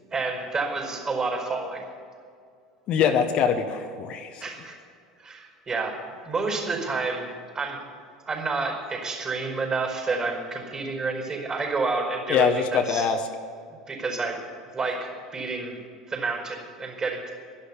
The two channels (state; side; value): normal; both; correlation 0.54